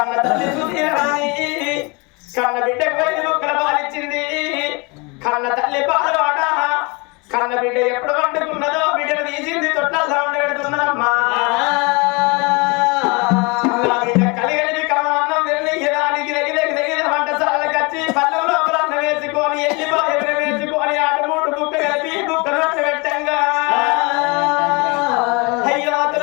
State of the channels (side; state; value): right; quieter; 28.8 dB